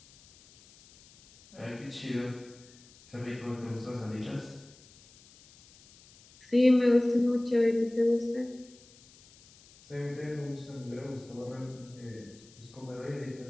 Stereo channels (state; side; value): noise; left; hiss, 25 dB below the sound